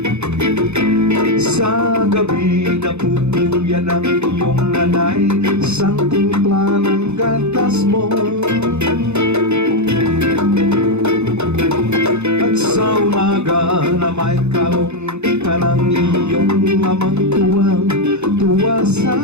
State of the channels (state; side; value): late; left; 0.81 ms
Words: Sa gabi napupuyan ang iyong nanay, isang timpla ng gatas mo. At sa umaga na may kalong ka ng iyong amang tuwang-tuwa